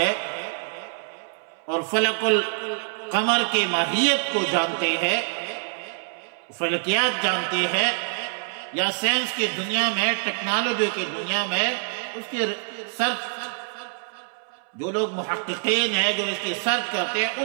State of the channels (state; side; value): silent; left; 61 dB below the other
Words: اور فلک القمر کی ماہیت کو جانتے ہیں، فلکیات جانتے ہیں، یا سائنس کی دنیا میں، ٹیکنالوجی کی دنیا میں اس کی سرچ، جو لوگ محققین ہیں جو اس کی سرچ کرتے ہیں